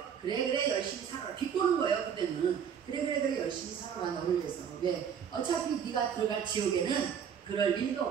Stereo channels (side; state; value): left; quieter; 7.9 dB